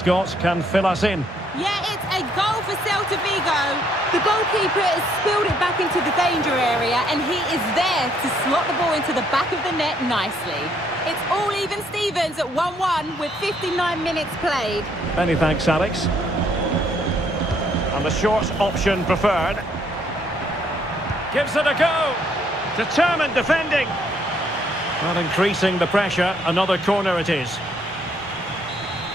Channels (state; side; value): normal; both; correlation 0.68